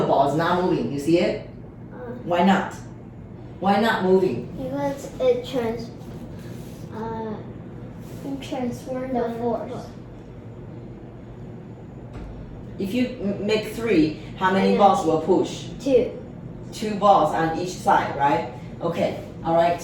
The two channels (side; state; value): both; identical; correlation 1.00